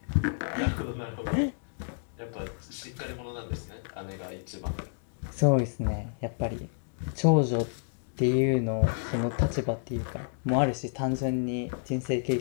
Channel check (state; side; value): silent; right; digital silence